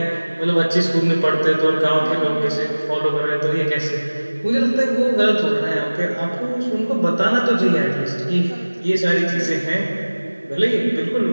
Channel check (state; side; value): inverted; both; correlation -1.00